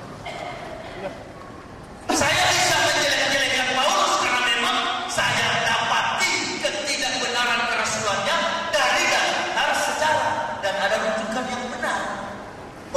Saya bisa menjelek-jelekan Paulus karena memang saya dapati ketidakbenaran kerasulannya dari dasar sejarah dan ada rujukan yang benar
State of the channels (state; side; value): identical; both; correlation 1.00